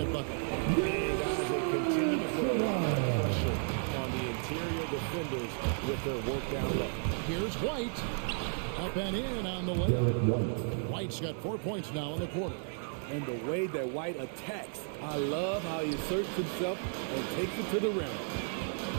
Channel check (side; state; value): left; silent; 56 dB below the other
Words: bucket. And guys, they continue to put a lot of pressure on the interior defenders with their work down low. Here's White. Up and in on the way. White's got 4 points now in the quarter. And the way that White attacks, I love how he asserts himself and takes it to the rim.